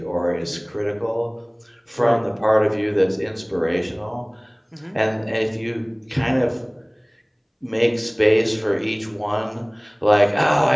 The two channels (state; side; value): identical; both; correlation 1.00